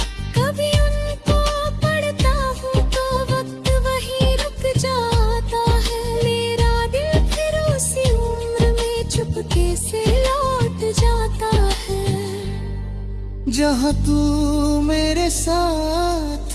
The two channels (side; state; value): both; identical; correlation 1.00